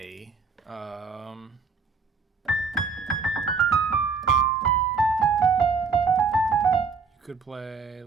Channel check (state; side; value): quieter; left; 5.0 dB